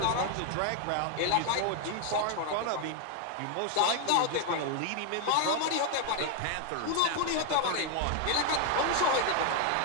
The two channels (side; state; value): both; different; correlation 0.00